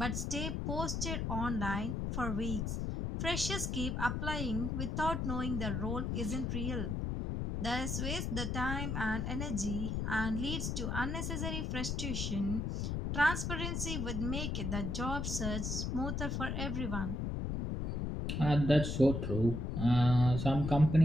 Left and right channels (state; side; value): noise; left; rumble, 1 dB below the sound